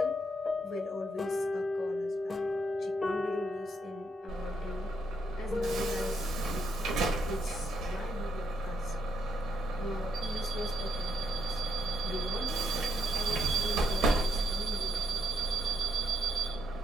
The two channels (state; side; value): normal; both; correlation 0.76